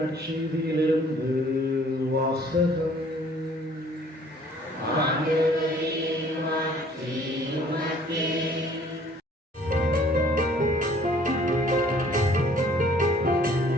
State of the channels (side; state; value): both; normal; correlation 0.57